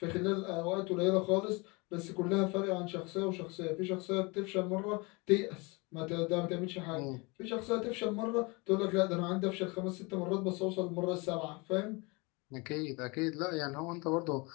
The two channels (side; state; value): right; quieter; 27.5 dB